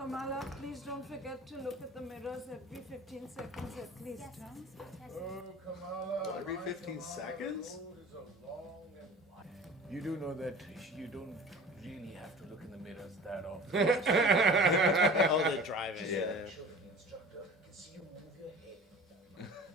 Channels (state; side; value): normal; both; correlation 0.41